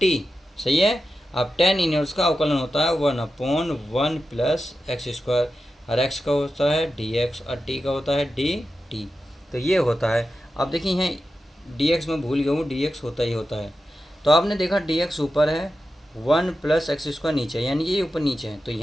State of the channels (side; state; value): both; normal; correlation 0.91